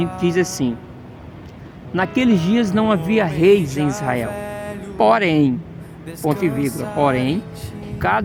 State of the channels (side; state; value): both; identical; correlation 1.00